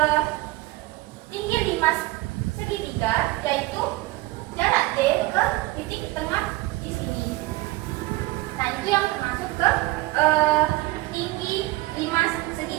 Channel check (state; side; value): quieter; left; 19.7 dB